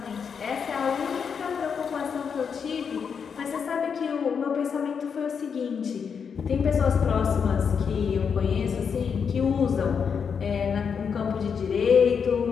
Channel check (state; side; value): quieter; right; 6.5 dB